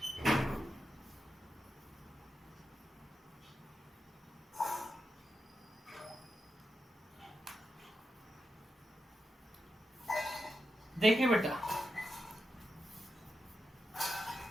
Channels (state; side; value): normal; both; correlation 0.88